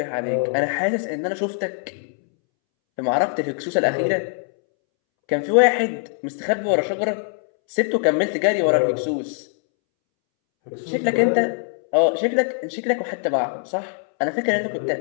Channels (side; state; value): right; silent; 64 dB below the other